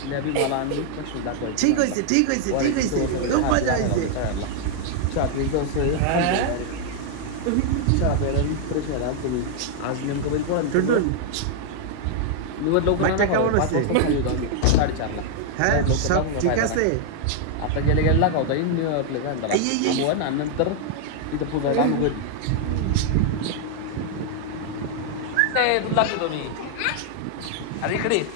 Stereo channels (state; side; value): different; both; correlation 0.00